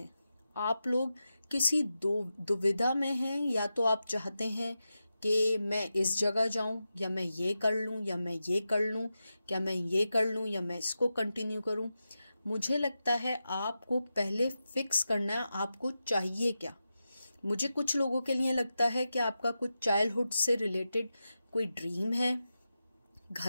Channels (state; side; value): inverted; both; correlation -0.91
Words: आप लोग किसी दुविधा में हैं। या तो आप चाहते हैं कि मैं इस जगह जाऊं, या मैं ये कर लूं, या मैं ये कर लूं, क्या मैं ये कर लूं, या मैं इसको कंटिन्यू करूं। मुझे लगता है आपको पहले फिक्स करना है आपको चाहिए क्या। मुझे कुछ लोगों के लिए लगता है कि आपका कुछ चाइल्डहुड से रिलेटेड कोई ड्रीम है,